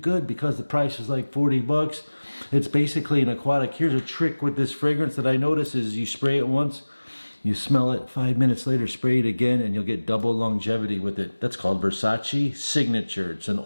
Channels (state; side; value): inverted; both; correlation -1.00